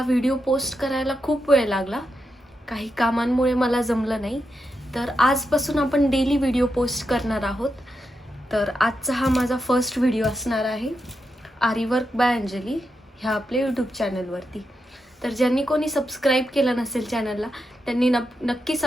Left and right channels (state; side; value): normal; both; correlation 0.86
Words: व्हिडिओ पोस्ट करायला खूप वेळ लागला. काही कामांमुळे मला जमलं नाही. तर आजपासून आपण डेली व्हिडिओ पोस्ट करणार आहोत. तर आजचा हा माझा फर्स्ट व्हिडिओ असणार आहे आरीवर्क बाय अंजली ह्या आपल्या यूट्यूब चॅनलवरती. तर ज्यांनी कोणी सबस्क्राईब केलं नसेल चॅनलला त्यांनी नक्की